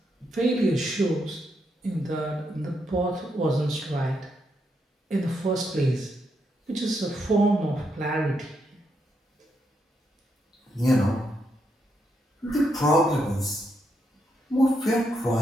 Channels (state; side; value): normal; both; correlation 0.80